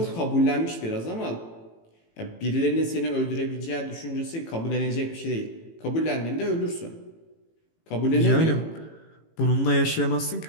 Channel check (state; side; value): late; right; 18 ms